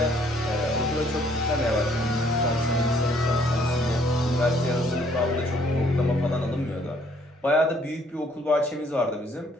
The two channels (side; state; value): both; normal; correlation 0.64